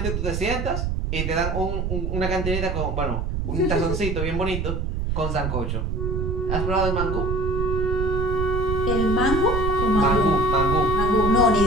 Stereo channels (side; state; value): right; noise; rumble, 1 dB below the sound